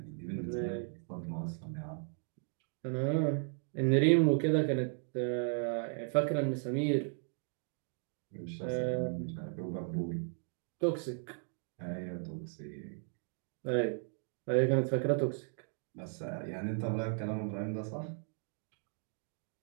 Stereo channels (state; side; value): silent; left; 54 dB below the other